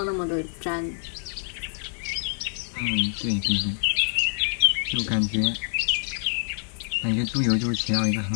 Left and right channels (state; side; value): silent; right; 61 dB below the other